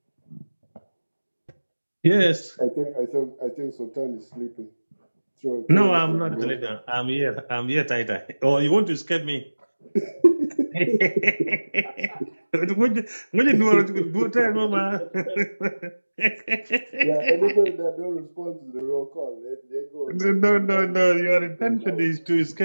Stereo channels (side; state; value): both; inverted; correlation -1.00